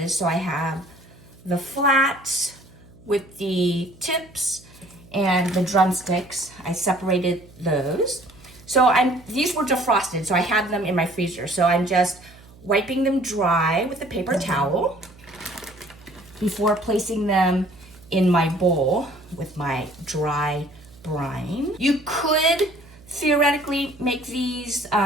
So I have the flats with the tips and the drumsticks. I separated those. So these were defrosted, so I had them in my freezer. So I'm just wiping them dry with a paper towel before placing them in my bowl with my dry brine. You could theoretically make these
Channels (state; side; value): noise; right; hum, 23 dB below the sound